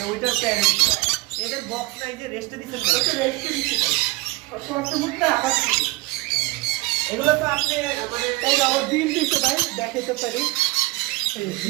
ওইটার প্যারেন্ট। এদের বক্স নাই যে রেস্টে দিচ্ছেন না? এটা রেস্টে দিতে পারে। কষ্টমুখটা আবার ছিল। এগুলো তো আপনি মানে তাই না, ওর ডিম দিতে ভাই, দেখাতে পারি। এই যে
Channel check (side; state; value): left; quieter; 21.4 dB